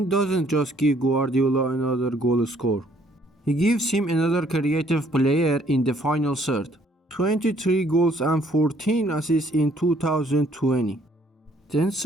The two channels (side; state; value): both; normal; correlation 0.64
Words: doesn't just give Guardiola another goal scorer. He gives him another creative player in the final third. 23 goals and 14 assists in 2020. Then